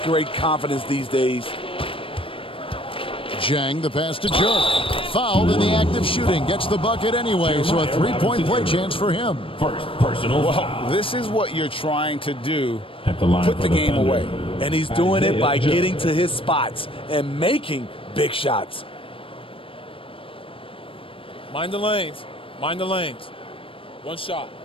great confidence these days. Jang the pass to Joe. Fouled in the act of shooting. Gets the bucket anyway, so a three-point play chance for him. First personal Well, this is what you're trying to do. Put the game away. And he's doing it by getting to his spots and making big shots. Mind the lanes. Mind the lanes. One shot.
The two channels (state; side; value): late; right; 0.26 ms